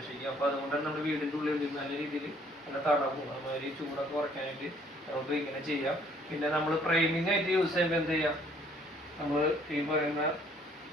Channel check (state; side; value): normal; both; correlation 0.61